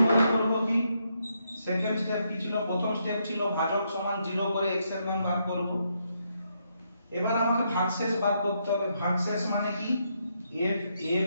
করব কি, সেকেন্ড স্টেপ কি ছিল, প্রথম স্টেপ ছিল ভাজক সমান 0 করে x এর মান বার করব। এবার আমাকে ভাগশেষ বার করতে হবে, ভাগশেষ মানে কি f a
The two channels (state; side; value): inverted; both; correlation -0.78